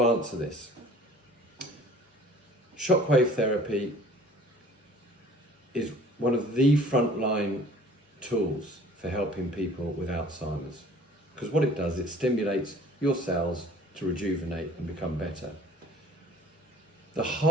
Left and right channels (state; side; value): normal; both; correlation 0.51